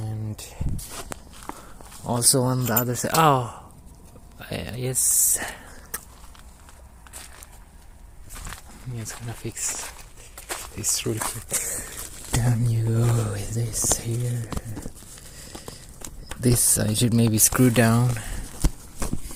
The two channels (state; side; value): identical; both; correlation 1.00